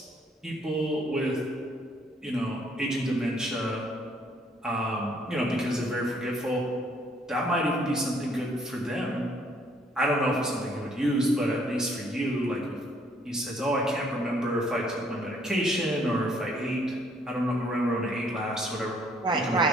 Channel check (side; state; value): both; normal; correlation 0.65